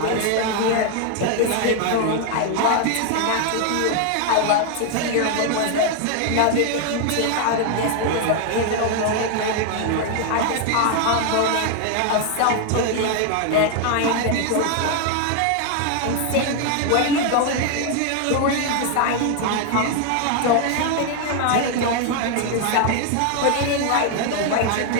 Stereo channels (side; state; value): both; different; correlation 0.00